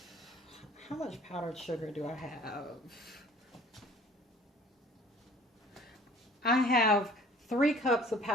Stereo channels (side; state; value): both; normal; correlation 0.50